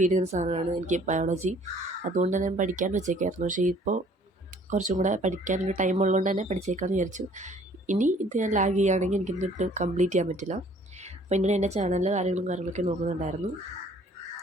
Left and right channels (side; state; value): both; normal; correlation 0.57